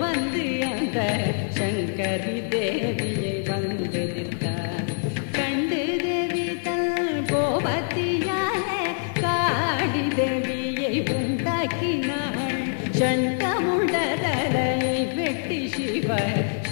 வந்து அந்த சங்கரி தேவியை வந்து நின்றான். கண்டு தேவி தன் கோபத்தியாலே காடி தேவியை உண்டாக்கினாள். சண்டமுடரை வெட்டி சிவ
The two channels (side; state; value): right; silent; digital silence